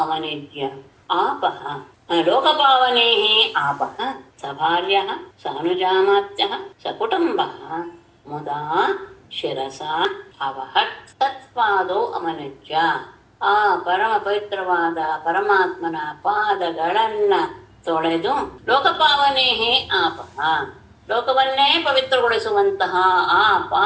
ಆಪಃ ಲೋಕಪಾವನೇಃ ಆಪಃ ಸಭಾರ್ಯಃ ಸಾನುಜಾಮಾತ್ಯಃ ಸಕುಟುಂಬಃ ಮುದಾ ಶಿರಸಾ ಅವಹತ್. ತತ್ಪಾದೌ ಅವನಿಜ್ಯ ಆ ಪರಮ ಪವಿತ್ರವಾದ ಪರಮಾತ್ಮನ ಪಾದಗಳನ್ನ ತೊಳೆದು ಲೋಕಪಾವನೇಹೇ ಆಪಃ ಲೋಕವನ್ನೇ ಪವಿತ್ರಗೊಳಿಸುವಂತಹ ಆ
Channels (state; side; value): identical; both; correlation 1.00